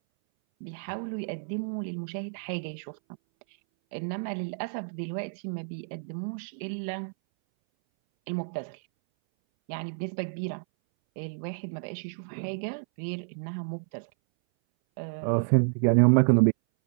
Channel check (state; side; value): silent; left; 58 dB below the other